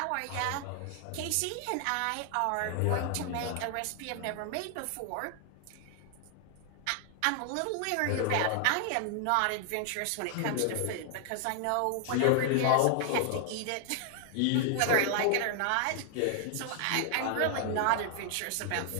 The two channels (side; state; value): both; different; correlation 0.00